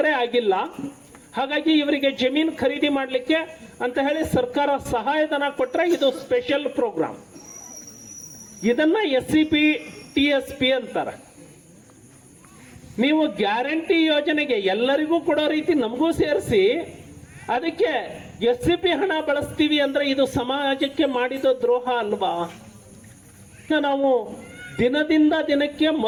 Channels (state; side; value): identical; both; correlation 1.00